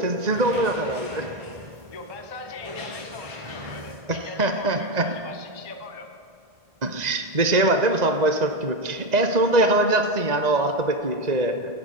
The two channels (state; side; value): late; left; 1.9 ms